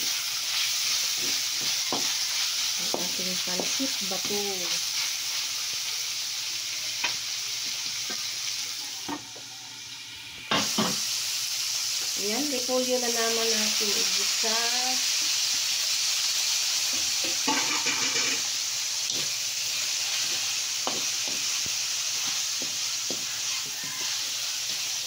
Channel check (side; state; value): both; identical; correlation 1.00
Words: Ang ating pansit bato. Ayan, repolyo na naman natin igisa.